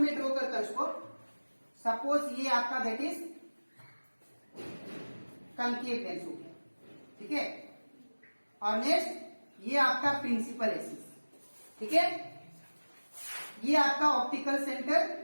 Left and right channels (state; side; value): inverted; both; correlation -1.00